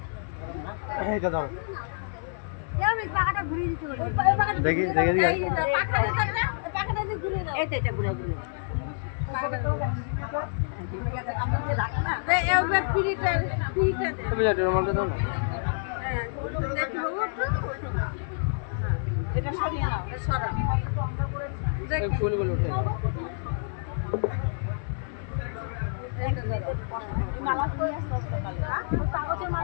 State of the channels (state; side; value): silent; right; 56 dB below the other